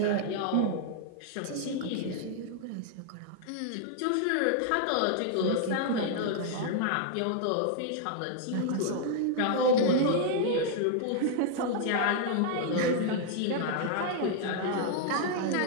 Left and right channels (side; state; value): both; different; correlation -0.01